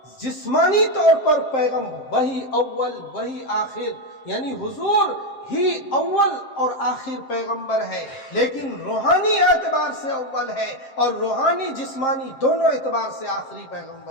جسمانی طور پر پیغام وہی اول وہی آخر، یعنی حضور ہی اول اور آخر پیغمبر ہے، لیکن روحانی اعتبار سے اول ہے اور روحانی جسمانی دونوں اعتبار سے آخری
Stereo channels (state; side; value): late; right; 7.5 ms